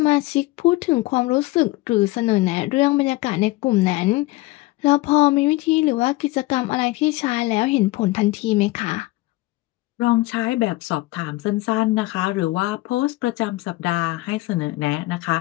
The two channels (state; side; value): quieter; right; 19.9 dB